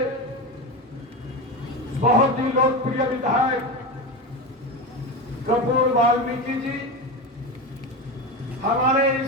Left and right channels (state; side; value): normal; both; correlation 0.21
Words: बहुत ही लोकप्रिय विधायक कपूर वाल्मीकि जी हमारे